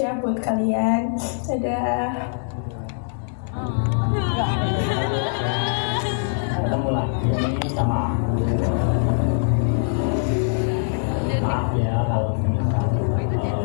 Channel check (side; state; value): right; silent; digital silence